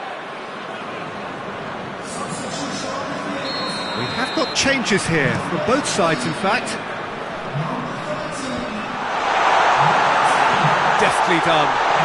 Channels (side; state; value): both; identical; correlation 1.00